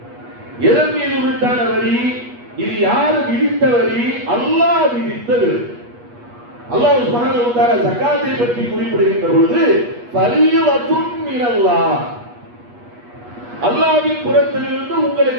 எதன் மீது உரித்தான வரி? இது யார் விதித்த வரி? அல்லாஹ் விதித்த வரி. அல்லாஹ் சுப்ஹானஹு வ தஆலா ஜகாத்தை பற்றி குறிப்பிடுகின்ற பொழுது ஃபரீதத்துன் மினல்லாஹ், அல்லாஹ்வின் புறத்திலிருந்து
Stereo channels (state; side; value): late; left; 8.3 ms